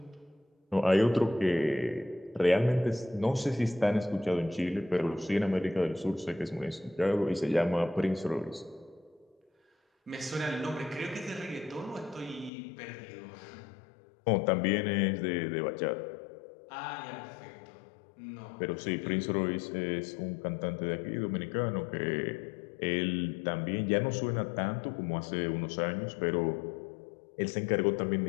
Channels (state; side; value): drops out; right; at 12.5 s